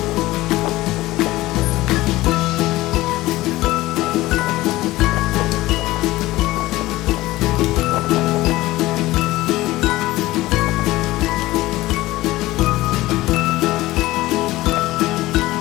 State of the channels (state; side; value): quieter; right; 17.8 dB